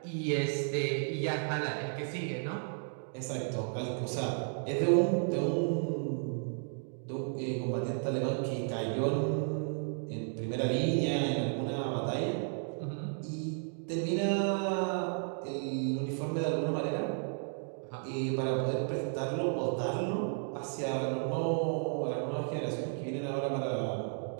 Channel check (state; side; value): silent; left; 55 dB below the other